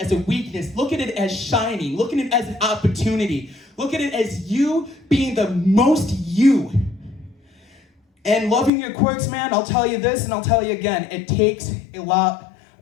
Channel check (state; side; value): drops out; right; at 8.7 s